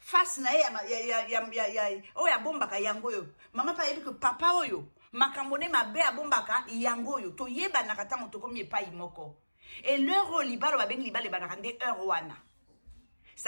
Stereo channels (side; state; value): both; inverted; correlation -1.00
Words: na ye oyo abombaka yango oyo mama pa ayebi ke papa oyo makambo ne mabe abombaka yango oyo toyebanaka ntango tokomi epai moko et l'heure oyo libala babengi libala ebanaka nde heure wana